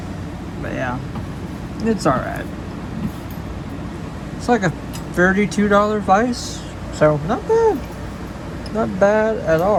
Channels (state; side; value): identical; both; correlation 1.00